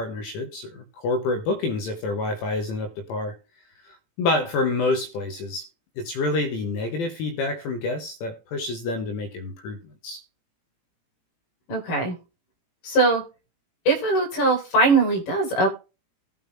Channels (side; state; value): right; late; 18 ms